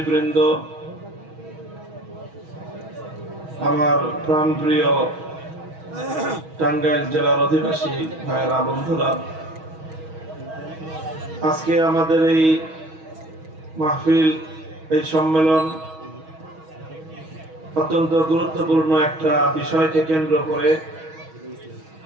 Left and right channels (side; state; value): left; late; 6.3 ms